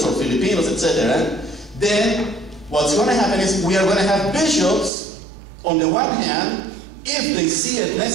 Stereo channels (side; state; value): left; drops out; at 4.9 s